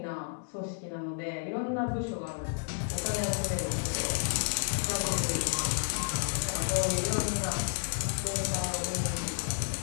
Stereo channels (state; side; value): silent; right; digital silence